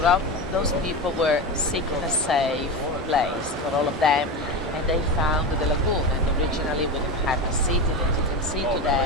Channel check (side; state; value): both; normal; correlation 0.21